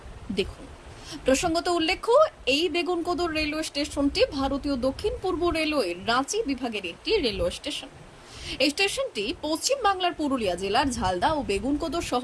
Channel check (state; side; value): identical; both; correlation 1.00